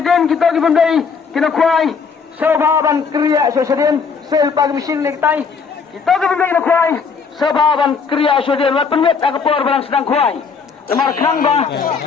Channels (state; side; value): quieter; right; 5.6 dB